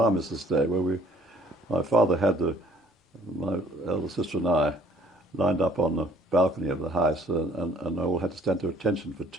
Day, where my father had my elder sister and I lined up on the balcony of the house, and all had to stand to attention for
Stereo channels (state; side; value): normal; both; correlation 0.58